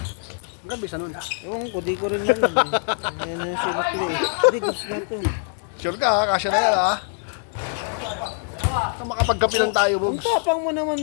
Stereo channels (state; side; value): silent; right; 58 dB below the other